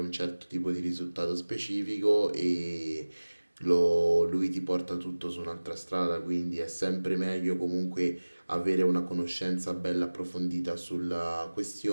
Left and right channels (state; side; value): inverted; both; correlation -1.00